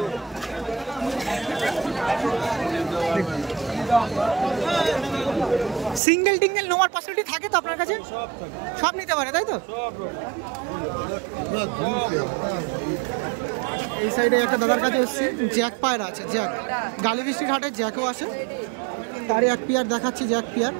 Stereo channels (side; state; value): left; drops out; at 6.0 s